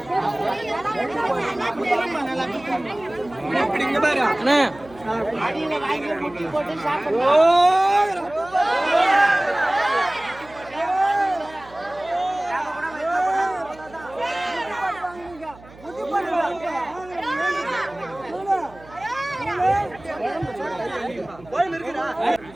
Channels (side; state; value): right; noise; hum, 22 dB below the sound